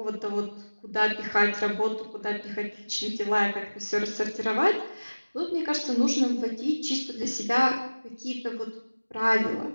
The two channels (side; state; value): both; inverted; correlation -1.00